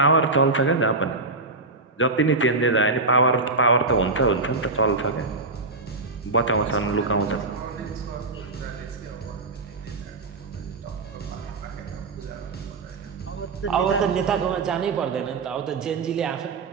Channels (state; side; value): quieter; left; 3.5 dB